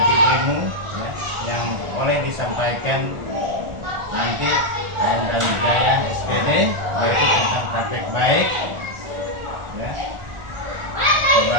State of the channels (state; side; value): late; left; 1.4 ms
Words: ilmu ya, yang boleh disampaikan nanti dan Jaya SPD, yaitu tentang praktek baik ya,